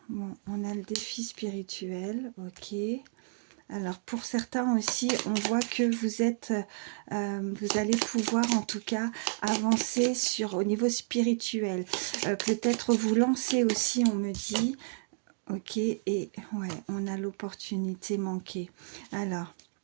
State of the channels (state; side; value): silent; left; 57 dB below the other